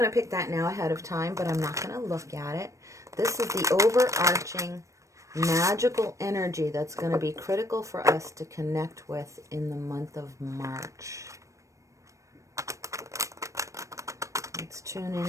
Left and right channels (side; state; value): left; late; 0.15 ms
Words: to pick that now ahead of time, but I'm not going to look at it. This is the overarching magical energy that's going to be critical for us to connect with in the month of March. Let's tune